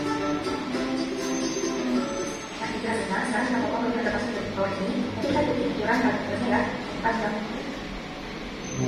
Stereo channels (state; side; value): identical; both; correlation 1.00